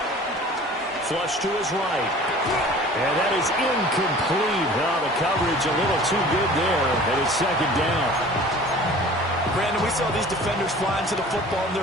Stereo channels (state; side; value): normal; both; correlation 0.45